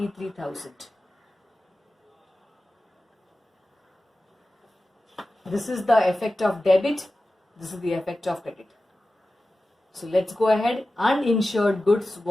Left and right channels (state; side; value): normal; both; correlation 0.94